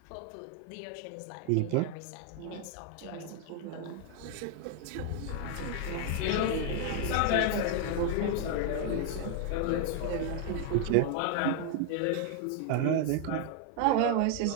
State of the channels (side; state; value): both; different; correlation 0.01